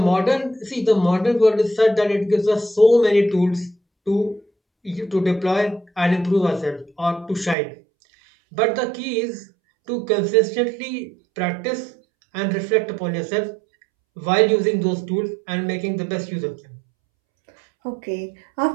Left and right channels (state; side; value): drops out; left; at 7.6 s